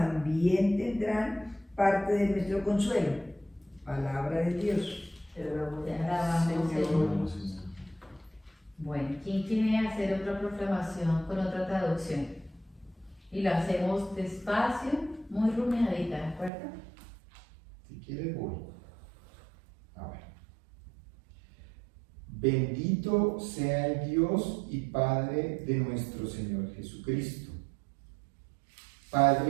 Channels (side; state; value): left; drops out; at 16.5 s